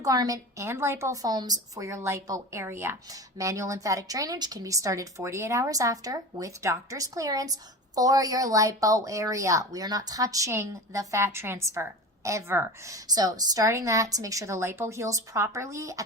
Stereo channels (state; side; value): normal; both; correlation 0.31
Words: and lipo foams for your lipo area. Manual lymphatic drainage can be started 48 hours after with doctor's clearance for your lipo area. We are not touching the fat transfer ever. So starting that to make sure the lipo heals properly